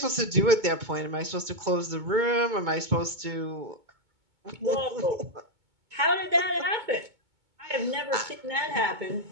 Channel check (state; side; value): late; left; 2.2 ms